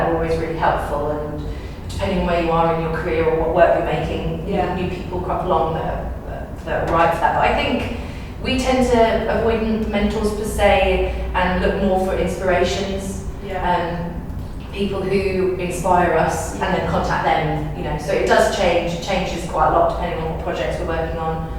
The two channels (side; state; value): both; identical; correlation 1.00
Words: are always really helpful, and depending on where you are in your career or what work you're making, new people crop along that are right for that. But I think we tend to avoid mentors per se and look more for inspirations, people who inspire us, and then contact them. So it does change. It changes quite a lot depending on what projects we're working on.